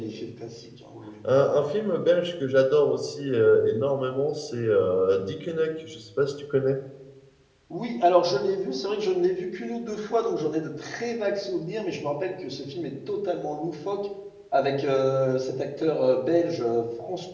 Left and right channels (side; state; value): both; identical; correlation 1.00